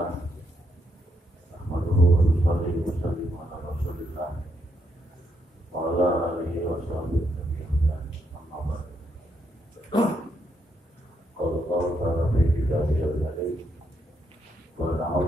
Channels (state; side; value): normal; both; correlation 0.78